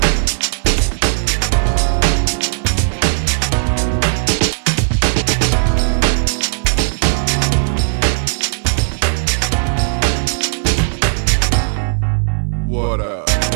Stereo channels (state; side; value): silent; left; digital silence